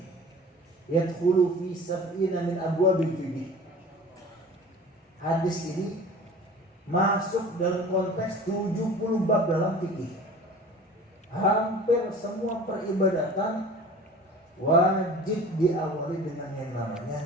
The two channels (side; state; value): both; normal; correlation 0.42